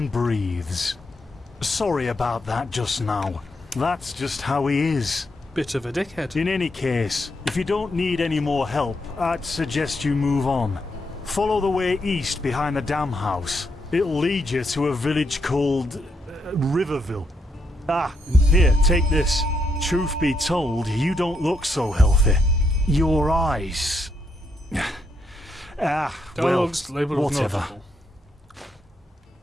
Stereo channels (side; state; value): both; normal; correlation 0.78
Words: breathes. Sorry about that just now. That's just how he is. Bit of a dickhead. In any case, if you don't need any more help, I'd suggest you move on. Follow the way east behind the dam house. It'll lead you to a village called Riverville. Ah, here, take this. Truth be told, you don't look so healthy. Your eyes... well, Dialogues labeled with whatever. notable.